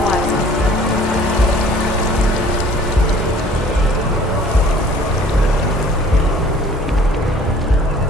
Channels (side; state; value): both; normal; correlation 0.52